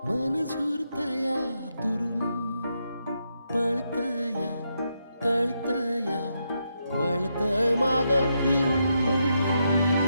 मन झुरतया दुरून पळतया कळतया वळतय माग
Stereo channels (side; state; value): both; inverted; correlation -0.82